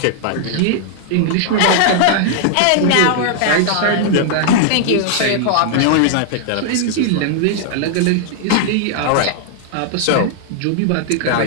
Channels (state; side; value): different; both; correlation 0.00